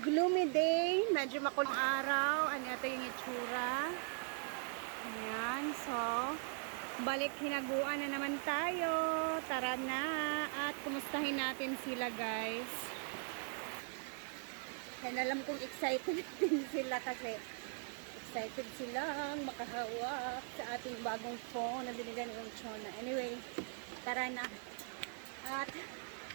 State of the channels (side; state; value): left; silent; 51 dB below the other